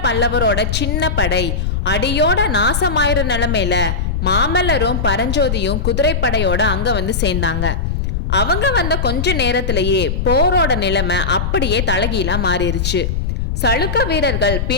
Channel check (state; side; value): noise; left; rumble, 1 dB below the sound